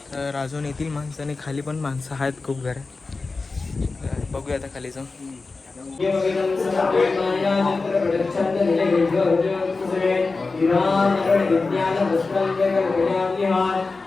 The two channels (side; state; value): right; quieter; 3.9 dB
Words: तर अजून येतील माणसं, आणि खाली पण माणसं आहेत खूप घर. बघूया आता खाली जाऊन.